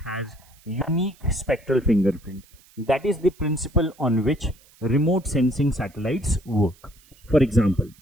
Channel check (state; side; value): noise; right; hiss, 28 dB below the sound